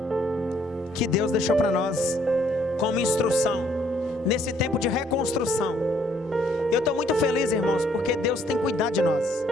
que Deus deixou para nós como instrução nesse tempo de reconstrução. Eu estou muito feliz, irmãos, porque Deus tem cuidado de nós.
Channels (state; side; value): normal; both; correlation 0.65